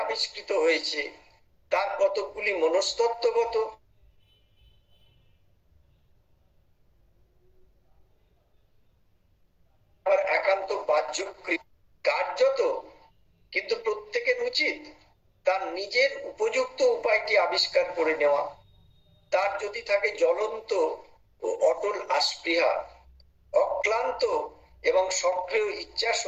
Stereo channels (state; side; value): identical; both; correlation 1.00